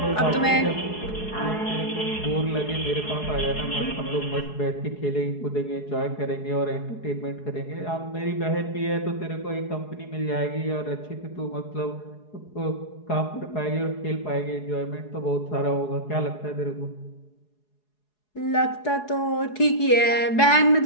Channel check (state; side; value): late; right; 4.8 ms